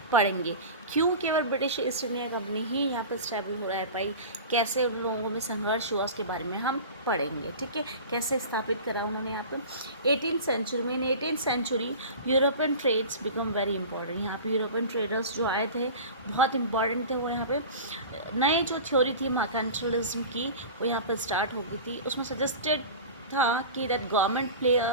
पढ़ेंगे। क्यों केवल ब्रिटिश ईस्ट इंडिया कंपनी ही यहाँ पर स्टेबल हो रहा है पाई, कैसे उन लोगों में संघर्ष हुआ, उसके बारे में हम पढ़ेंगे। ठीक है, कैसे स्थापित करा उन्होंने यहाँ पर 18th सेंचुरी में। In 18th century European trades become very important. यहाँ पे यूरोपियन ट्रेडर्स जो आए थे बहुत इंपॉर्टेंट थे। वो यहाँ पे नए जो थ्योरी थी मर्केंटलिज्म की, वो यहाँ पर स्टार्ट हो गई थी। उसमें सजेस्टेड था कि that government play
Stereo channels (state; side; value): inverted; both; correlation -0.34